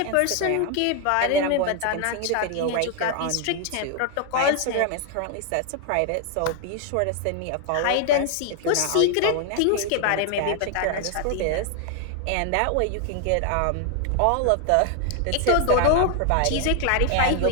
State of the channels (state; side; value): different; both; correlation 0.00